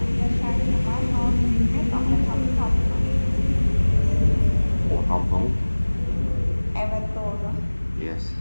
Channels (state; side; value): inverted; both; correlation -1.00